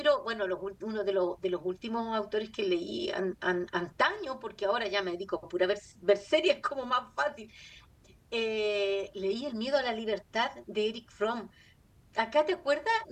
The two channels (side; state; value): both; identical; correlation 1.00